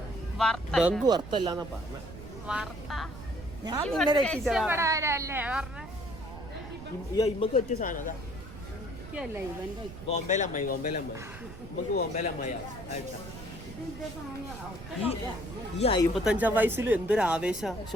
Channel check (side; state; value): right; noise; rumble, 13 dB below the sound